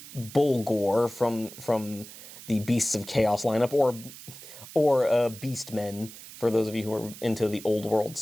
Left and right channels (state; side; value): noise; right; hiss, 16 dB below the sound